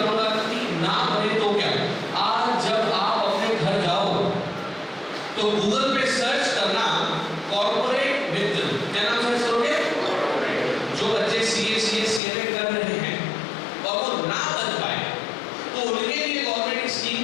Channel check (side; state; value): right; drops out; at 12.2 s